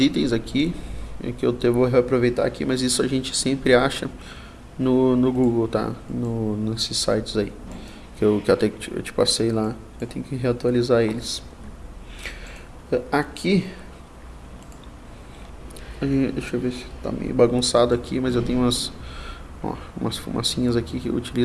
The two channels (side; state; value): both; identical; correlation 1.00